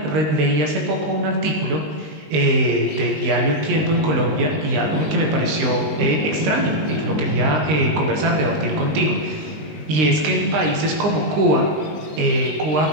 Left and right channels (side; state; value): left; late; 20 ms